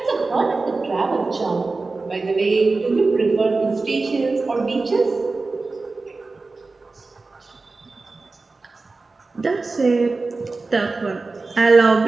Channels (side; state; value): left; quieter; 3.7 dB